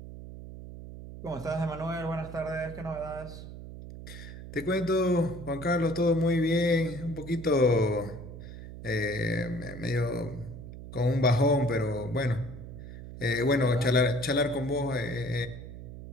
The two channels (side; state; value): right; noise; hum, 12 dB below the sound